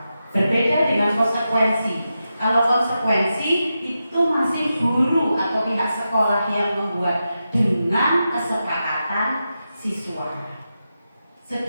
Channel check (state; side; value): inverted; both; correlation -0.89